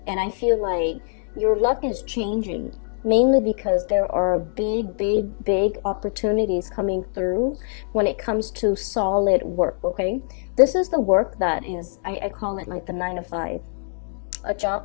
And I feel like your luck is changing, mainly because there are big opportunities coming through when it comes to solid work, okay? This is the work that is, I call it like the 9 to 5. A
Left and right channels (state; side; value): silent; right; digital silence